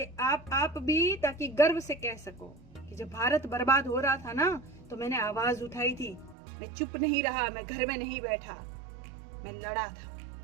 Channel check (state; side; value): drops out; left; at 6.4 s